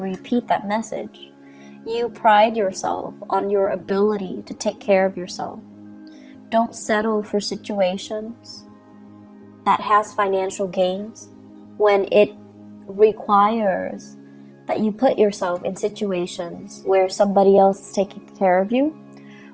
that message. You pride yourself on your ability to take care of yourself. Don't settle for situations that has financial gains when it requires that you put yourself in situations where somebody else is taking care of you,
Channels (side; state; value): both; identical; correlation 1.00